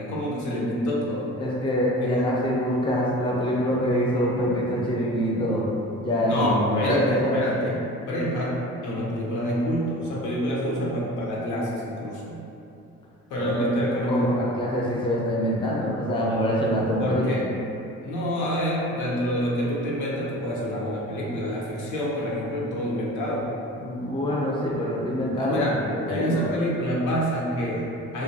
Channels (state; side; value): normal; both; correlation 0.39